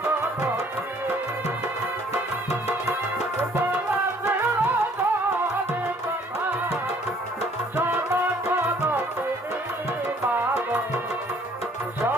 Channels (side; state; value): both; normal; correlation 0.59